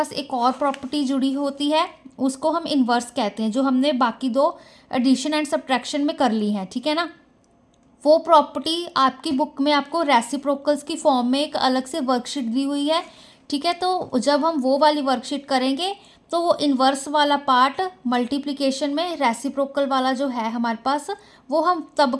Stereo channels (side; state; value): both; identical; correlation 1.00